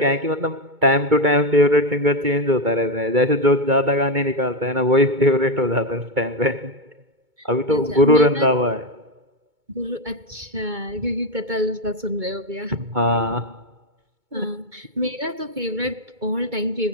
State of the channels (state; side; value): late; left; 2.2 ms